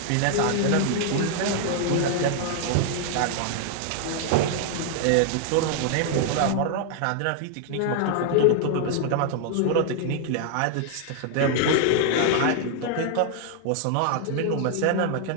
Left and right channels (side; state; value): both; different; correlation 0.00